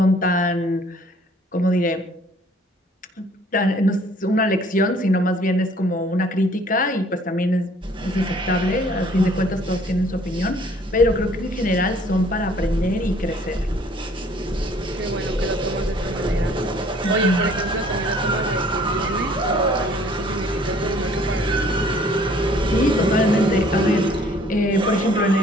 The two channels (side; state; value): both; normal; correlation 0.57